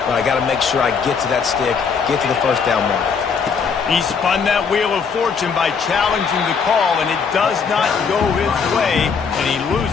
but I got to make sure I get to that stick, get to the first down mark. He spun that wheel of fortune by challenging the call, and it does not go his way, and he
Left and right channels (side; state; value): right; quieter; 5.9 dB